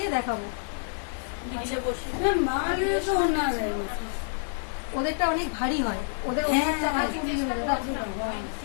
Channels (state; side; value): silent; right; 59 dB below the other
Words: দেখাবো। নিচে বসে মালে তো না ওদেরটা অনেক ভারী হয়, ওদের হ্যাঁ, ওড়নাটা ভারী।